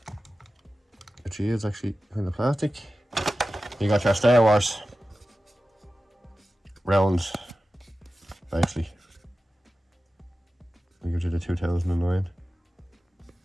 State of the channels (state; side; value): normal; both; correlation 0.94